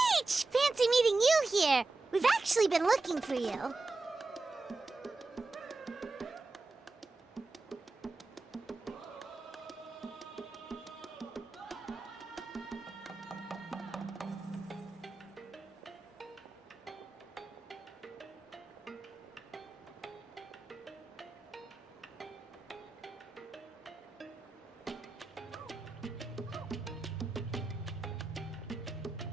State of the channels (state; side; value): quieter; left; 3.5 dB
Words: Fancy meeting you here! We've actually been looking for you.